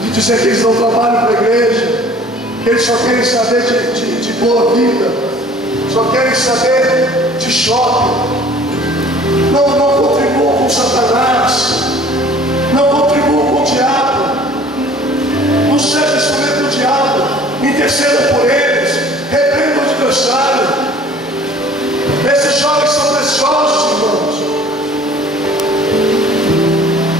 de dizer que eles não trabalham para a igreja, que eles só querem saber de boa vida, só querem saber de shopping, não contribuam com Satanás, não contribuam com o diabo, não seja instrumento do diabo, interceda por eles, repreenda o adversário. Esses jovens são preciosos, irmãos.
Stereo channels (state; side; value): normal; both; correlation 0.50